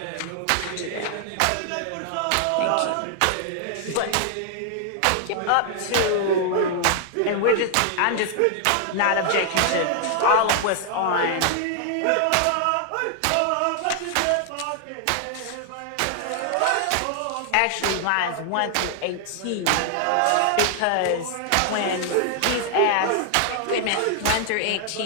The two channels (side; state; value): both; different; correlation 0.00